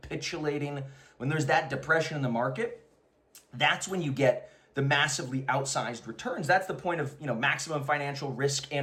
when there's that depression in the market, that's when you get the massively outsized returns. That's the point of, maximum financial risk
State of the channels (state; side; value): identical; both; correlation 1.00